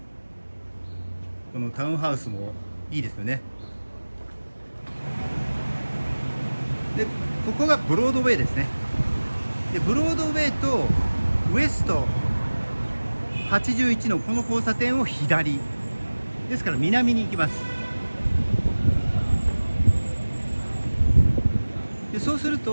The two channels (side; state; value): both; inverted; correlation -1.00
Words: このタウンハウスもいいですよね。でここがブロードウェイですね。でブロードウェイとウエスト81のこの交差点を左ですから南に行きます。でそうする